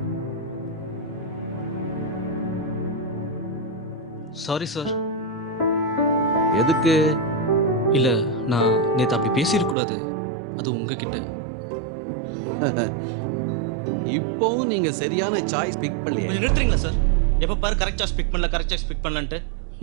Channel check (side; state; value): left; drops out; at 9.8 s